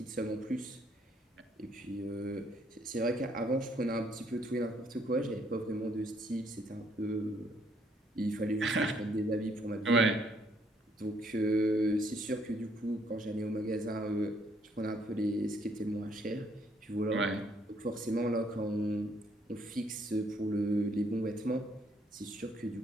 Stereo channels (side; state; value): both; normal; correlation 0.68